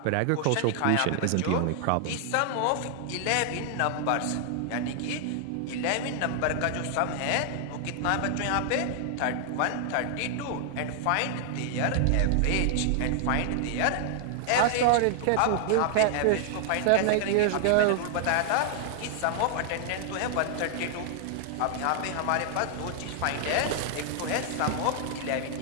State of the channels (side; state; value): both; different; correlation 0.00